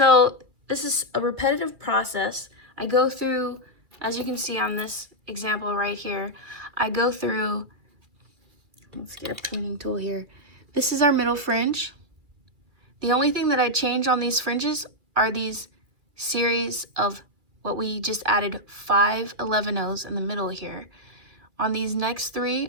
this is a repetitive process. I go through, as you can see on this example right here, I go through, let's get a pruning tool here. This is our middle fringe. The only thing that I change on these fringes are these series of what we just added 5 11-0s in the middle here. On these next 3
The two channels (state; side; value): late; left; 2.3 ms